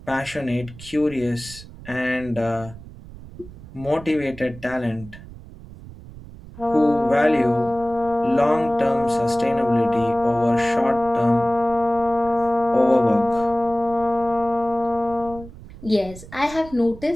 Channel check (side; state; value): right; noise; rumble, 17 dB below the sound